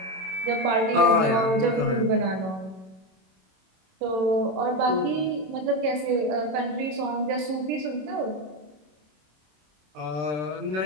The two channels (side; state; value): left; late; 27 ms